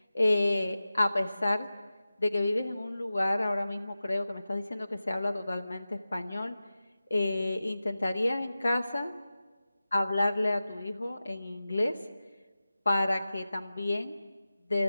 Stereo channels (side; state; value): both; inverted; correlation -0.95